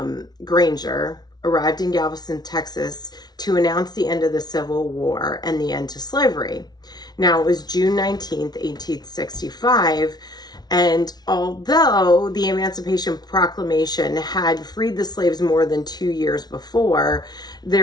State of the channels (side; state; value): right; late; 0.19 ms